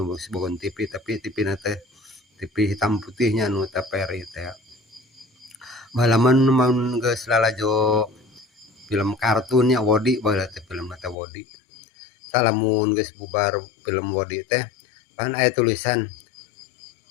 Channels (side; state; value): right; drops out; at 11.2 s